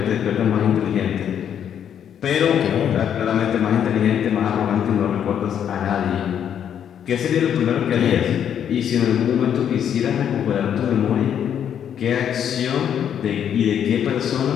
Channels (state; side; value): quieter; right; 9.0 dB